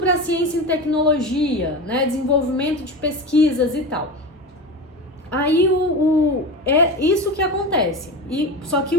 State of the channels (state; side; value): normal; both; correlation 0.26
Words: ciência e tecnologia, né, desenvolvimento de pesquisas e tal. Aí é isso que acontece. Só que